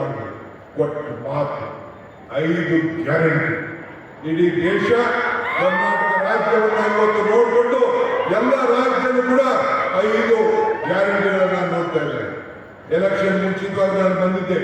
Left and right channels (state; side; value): identical; both; correlation 1.00